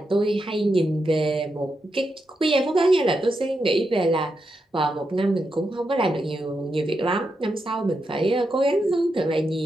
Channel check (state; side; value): normal; both; correlation 0.85